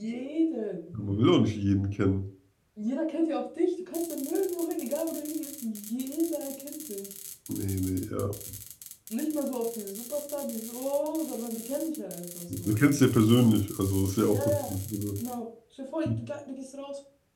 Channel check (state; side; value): identical; both; correlation 1.00